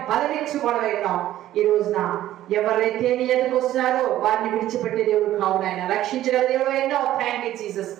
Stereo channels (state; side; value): quieter; left; 13.5 dB